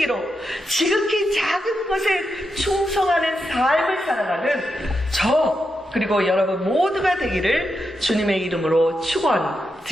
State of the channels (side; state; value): both; normal; correlation 0.86